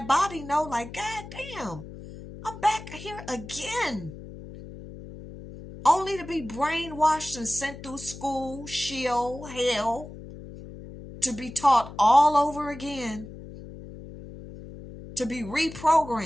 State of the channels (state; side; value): noise; left; hum, 14 dB below the sound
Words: body know, like, God damn, I'm back here again. Only to be brainwashed and sent through school, shield, hell, to be taught all over again, to be